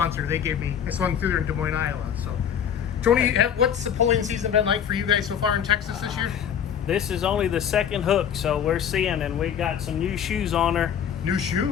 They gave me, I swung through there in Des Moines, Iowa. So, Tony, what's the pulling season been like for you guys so far in Texas this year? This is only the second hook, so we're seeing, and we got some new shoes on her. New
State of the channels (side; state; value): right; quieter; 8.5 dB